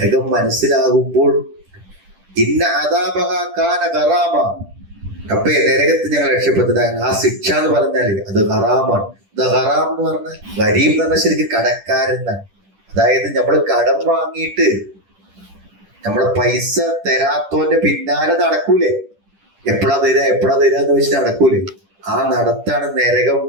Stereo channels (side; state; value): left; late; 10 ms